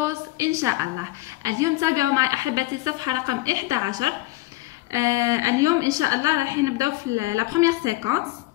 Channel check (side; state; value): right; quieter; 19.7 dB